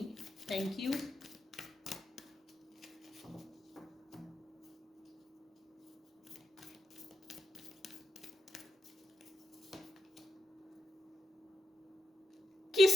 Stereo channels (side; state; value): both; normal; correlation 0.87